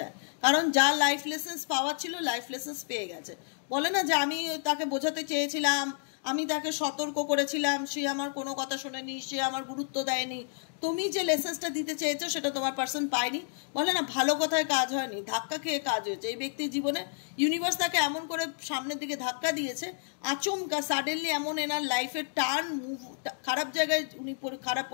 কারণ যা লাইফ লেসেন্স পাওয়ার ছিল লাইফ লেসেন্স পেয়ে গেছে। বলে না যে আমি তাকে বোঝাতে চেয়েছিলাম, আমি তাকে সতর্ক করেছিলাম, সে আমার কোনো কথা শোনেনি, সে আমার গুরুত্ব দেয়নি। তুমি যে লেসেন্সটা দিতে চেয়েছো সেটা তোমার পার্সন পায়নি। বলে না ভালো কথায় কাজ হয়নি, ধাক্কা খেয়ে কাজ হয়েছে। এই ব্যক্তির জীবনে ইউনিভার্স তাকে এমন করে সামনের দিকে ধাক্কা দিয়েছে, আচমকা সাডেনলি এমন এনার লাইফের টার্ন মুভ, খারাপ জায়গায় উনি খারাপ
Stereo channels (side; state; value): right; silent; digital silence